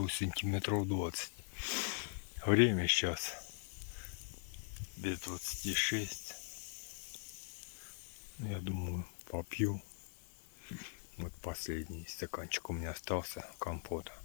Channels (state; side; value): silent; right; digital silence